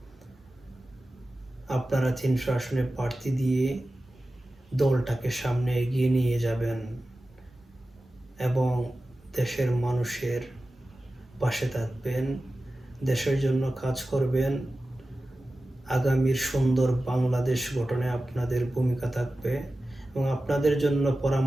আপনারা 300 আসনে প্রার্থী দিয়ে দলটাকে সামনে এগিয়ে নিয়ে যাবেন এবং দেশের মানুষের পাশে থাকবেন, দেশের জন্য কাজ করবেন। আগামীর সুন্দর বাংলাদেশ গঠনে আপনাদের ভূমিকা থাকবে এবং আপনাদের জন্য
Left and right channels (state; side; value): normal; both; correlation 0.94